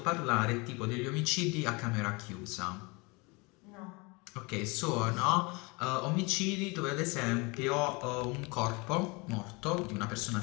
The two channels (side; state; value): right; quieter; 27.4 dB